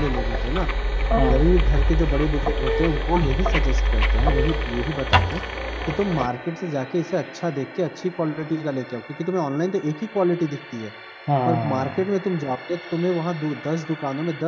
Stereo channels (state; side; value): identical; both; correlation 1.00